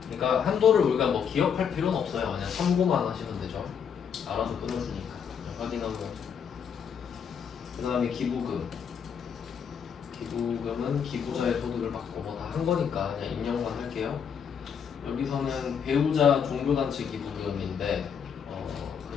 그러니까 한도를 우리가 뭐 기억할 필요는 없어요. 그냥 참고만 하시면 되죠. 알아서 끊어주니까. 확인하고. 그 다음에 기부금. 기부금은 기부자의 소득을 받고 뭐 다 한 거니까 그냥 입력만 할게요. 여기서는 배우자 종교단체 기부금인데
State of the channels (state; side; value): quieter; right; 7.3 dB